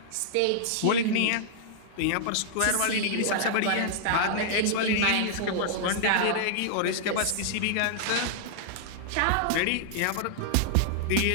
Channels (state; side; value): different; both; correlation -0.01